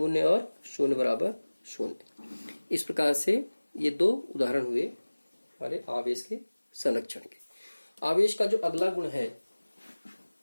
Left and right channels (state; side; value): inverted; both; correlation -1.00